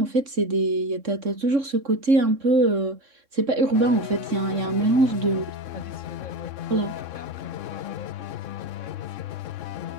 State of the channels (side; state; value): left; late; 3.6 ms